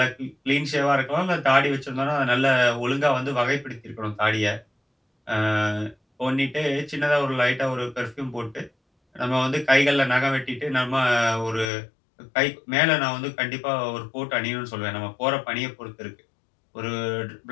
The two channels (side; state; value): right; drops out; at 11.7 s